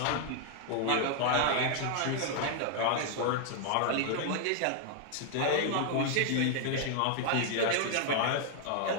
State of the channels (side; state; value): both; different; correlation 0.00